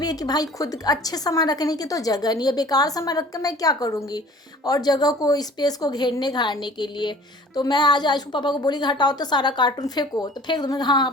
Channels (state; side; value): normal; both; correlation 0.47